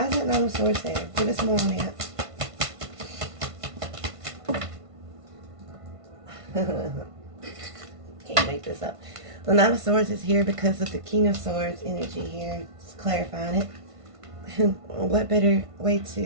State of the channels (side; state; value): left; late; 1.5 ms